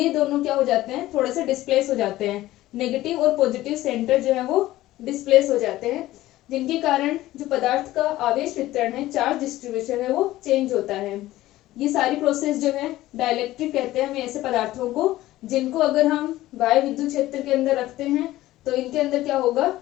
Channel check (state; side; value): quieter; right; 16.0 dB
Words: दोनों क्या हो जाते हैं, थोड़े से डिस्प्लेस हो जाते हैं। नेगेटिव और पॉजिटिव सेंटर जो है वो डिस्प्लेस हो जाते हैं, जिनके कारण जो पदार्थ का आवेश वितरण है, चार्ज डिस्ट्रीब्यूशन है, वो चेंज होता है। ये सारी प्रोसेस जो है डाइलेक्ट्रिक कहते हैं हमें ऐसे पदार्थों को, जिनको अगर हम बाह्य विद्युत क्षेत्र के अंदर रखते हैं तो इनके अंदर क्या होगा,